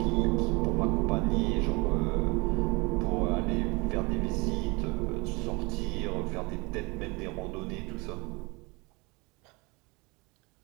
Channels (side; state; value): left; quieter; 26.9 dB